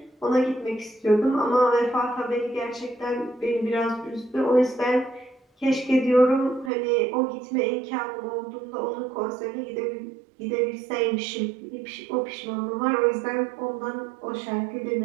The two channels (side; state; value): left; drops out; at 6.7 s